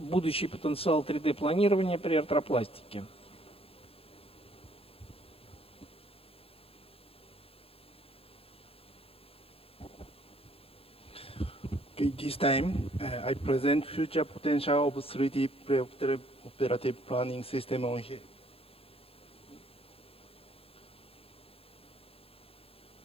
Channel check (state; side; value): late; right; 0.27 ms